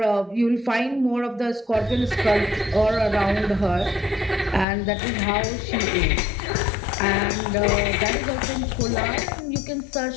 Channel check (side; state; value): right; drops out; at 4.7 s